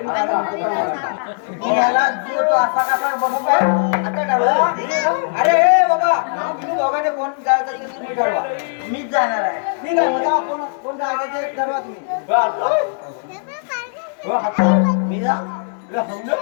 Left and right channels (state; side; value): silent; right; digital silence